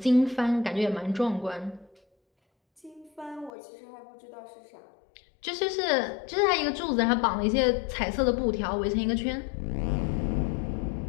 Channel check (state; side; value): drops out; right; at 3.5 s